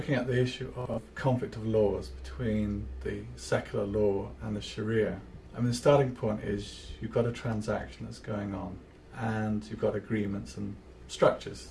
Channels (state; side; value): identical; both; correlation 1.00